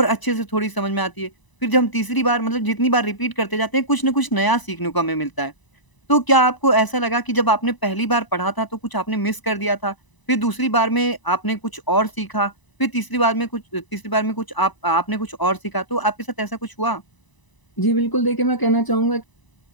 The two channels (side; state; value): right; late; 1.0 ms